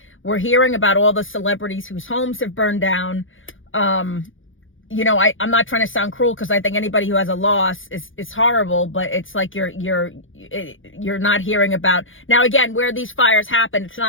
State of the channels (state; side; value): late; right; 0.58 ms